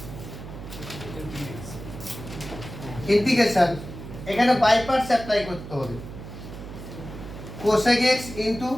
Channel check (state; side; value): noise; right; hum, 12 dB below the sound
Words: ইন্টিগ্রেশন এখানে বাই পার্টস অ্যাপ্লাই করতে হবে। cosec x into